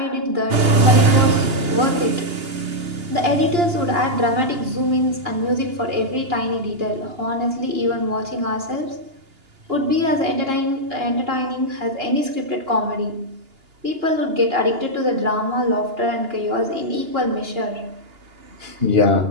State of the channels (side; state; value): left; late; 2.8 ms